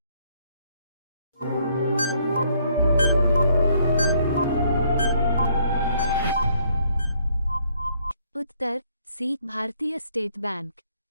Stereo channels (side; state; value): both; inverted; correlation -0.67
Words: उत्तर सी भारतीय स्टेट बैंक।